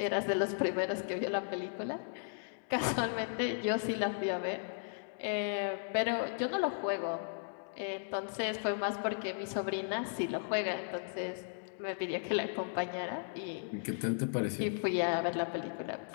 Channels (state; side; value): silent; right; digital silence